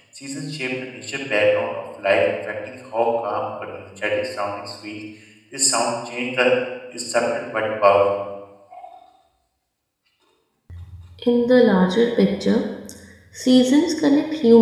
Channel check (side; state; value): both; identical; correlation 1.00